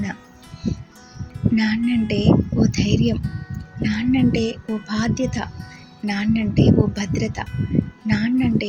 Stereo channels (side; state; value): both; identical; correlation 1.00